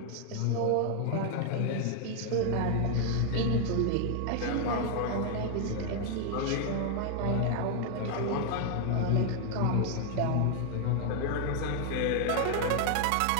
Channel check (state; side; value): different; both; correlation 0.00